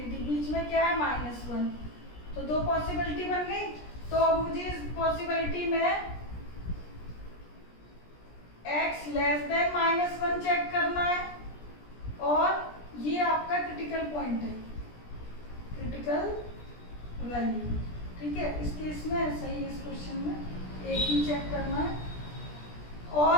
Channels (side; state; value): right; late; 17 ms